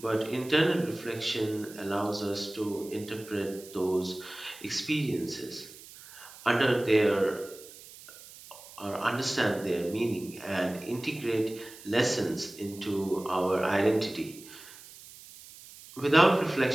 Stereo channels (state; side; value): noise; right; hiss, 18 dB below the sound